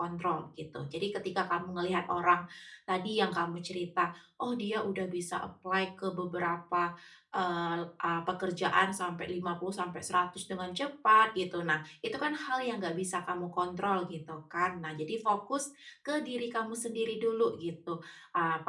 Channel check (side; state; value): both; identical; correlation 1.00